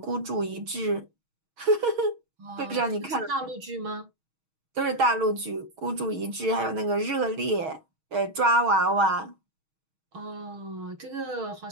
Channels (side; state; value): left; late; 6.3 ms